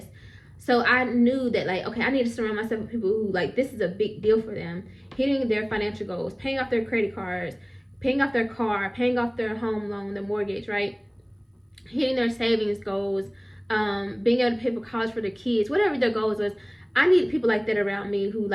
So I knew that, like, okay, I need to surround myself with people who, like, this is a big deal for them. Hitting their financial goals, paying off their credit cards, paying off their car, paying off their home loan, their mortgage, right? Hitting their savings goals, being able to pay for college for their kids, whatever their goals was. I need people like that around me who,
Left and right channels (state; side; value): identical; both; correlation 1.00